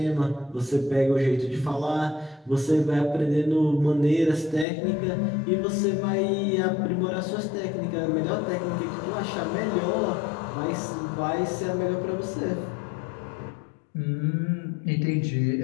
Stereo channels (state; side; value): drops out; right; at 4.7 s